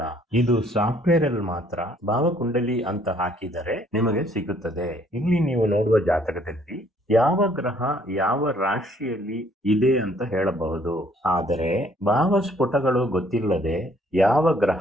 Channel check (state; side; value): normal; both; correlation 0.63